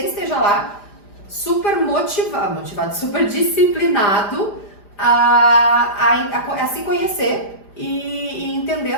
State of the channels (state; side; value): late; right; 5.0 ms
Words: esteja lá super motivado, super disciplinado a se conhecer e entender